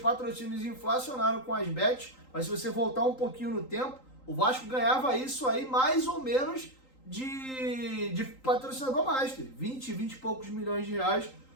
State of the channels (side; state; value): right; late; 3.8 ms